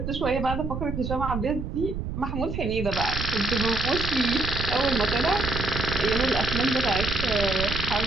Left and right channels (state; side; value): noise; right; rumble, 5 dB below the sound